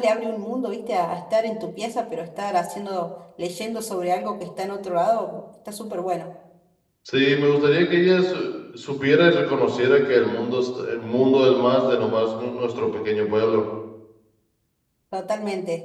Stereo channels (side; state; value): both; identical; correlation 1.00